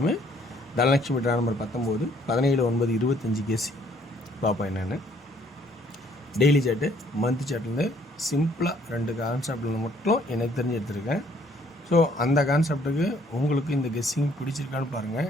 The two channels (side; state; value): both; normal; correlation 0.63